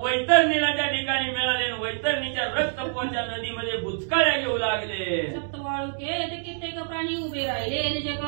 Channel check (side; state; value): left; silent; digital silence